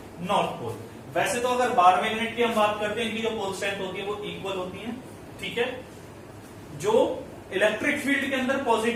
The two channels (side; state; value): both; identical; correlation 1.00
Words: नॉर्थ पोल। वैसे तो अगर बार मैग्नेट की हम बात करते हैं, इनकी जो पोल स्ट्रेंथ होती है वो इक्वल होती है, ठीक है। जो इलेक्ट्रिक फील्ड के अंदर